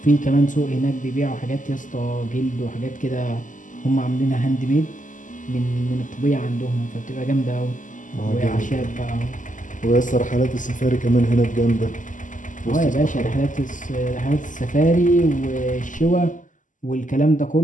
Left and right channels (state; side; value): late; right; 0.37 ms